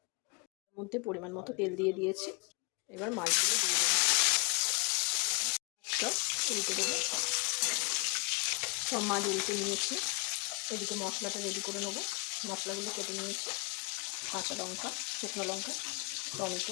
মধ্যে পরিমাণ মতো তেল দিয়ে দিয়েছি। এবার মাছগুলো দিয়ে দেবো, উল্টে দেবো। সব মাছ উল্টে নিয়েছি। এদিকে মশলাটা রেডি করে নেবো। মশলাগুলো কেটে নিয়েছি। কাঁচা লঙ্কা, শুকনো লঙ্কা,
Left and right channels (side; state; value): right; quieter; 30.1 dB